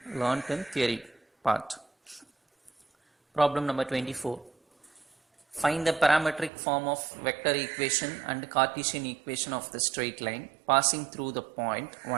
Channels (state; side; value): drops out; left; at 6.5 s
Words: learned in theory part. Problem number 24. Find the parametric form of vector equation and Cartesian equation of the straight line passing through the point,